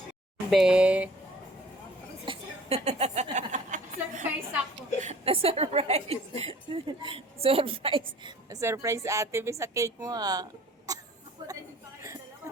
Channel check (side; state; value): both; normal; correlation 0.50